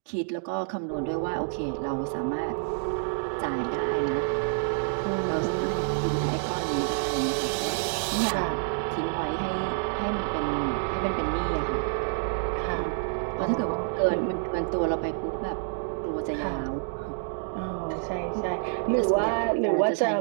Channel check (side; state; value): left; silent; digital silence